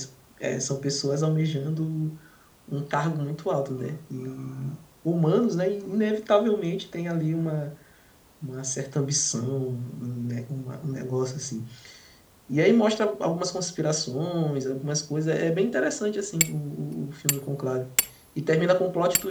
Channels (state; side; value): identical; both; correlation 1.00